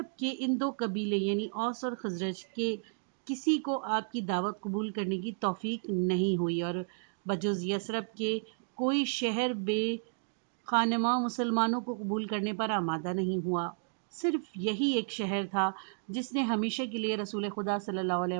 کے ان دو قبیلے یعنی اوس اور خزرج کے کسی کو آپ کی دعوت قبول کرنے کی توفیق نہیں ہوئی، اور بجز یثرب کے کوئی شہر بے خانماں مسلمانوں کو قبول کرنے پر آمادہ نہیں ہوا۔ صرف یہی ایک شہر تھا جس نے ہمیشہ کے لیے رسول خدا صلی اللہ علیہ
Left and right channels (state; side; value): silent; left; digital silence